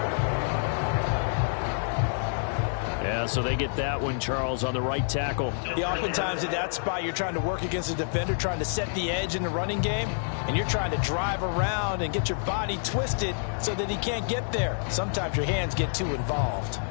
Yeah, so they get that one, Charles, on the right tackle. Yeah, oftentimes at that spot, you're trying to work against a defender, trying to set the edge in the running game, and you're trying to drive around and get your body twisted so that he can't get there. Sometimes your hands get too involved.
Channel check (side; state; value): right; silent; digital silence